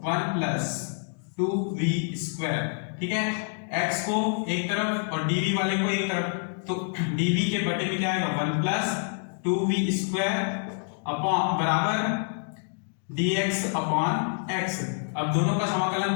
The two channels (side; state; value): right; silent; 60 dB below the other